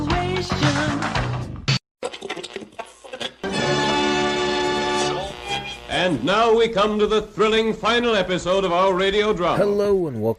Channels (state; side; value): identical; both; correlation 1.00